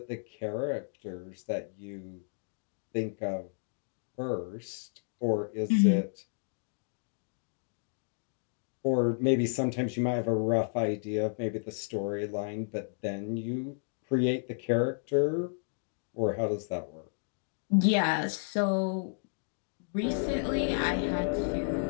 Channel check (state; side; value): silent; right; digital silence